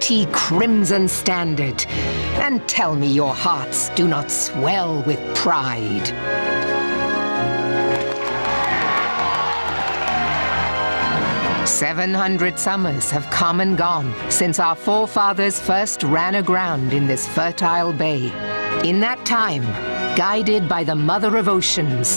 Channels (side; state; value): both; inverted; correlation -1.00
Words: crimson standard, and tell me your hearts do not swell with pride. "700 summers have come and gone since our forefathers first ran aground in this fertile bay. In that time, guided by the Mother of